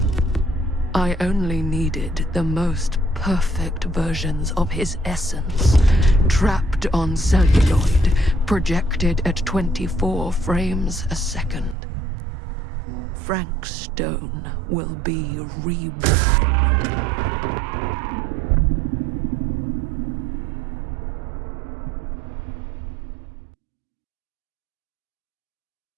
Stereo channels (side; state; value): left; drops out; at 11.8 s